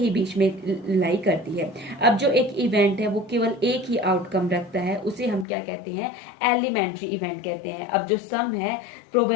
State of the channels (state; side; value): drops out; right; at 5.5 s